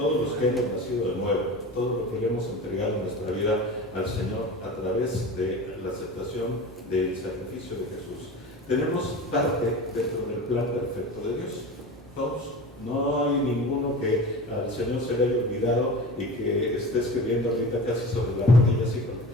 los que hemos nacido de nuevo, todo lo que le hemos entregado en nuestra vida al Señor a través de la aceptación del sacrificio de Jesús, tenemos parte dentro del plan perfecto de Dios. Todos. No hay ninguno que al Señor se le haya olvidado y que esté escribiendo ahorita casi sobre la rodilla, así como:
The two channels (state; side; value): normal; both; correlation 0.33